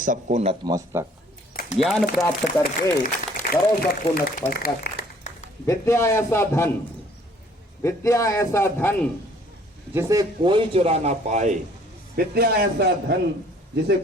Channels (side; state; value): both; normal; correlation 0.58